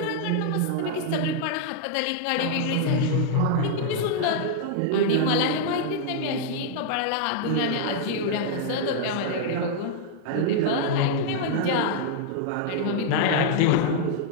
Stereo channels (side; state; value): both; different; correlation -0.01